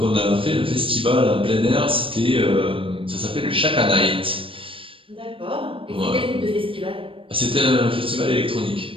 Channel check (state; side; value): late; left; 0.26 ms